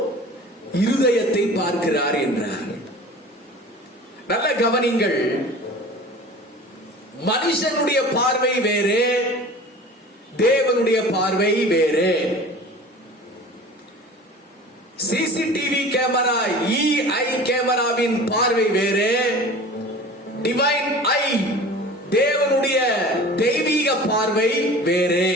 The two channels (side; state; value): both; normal; correlation 0.40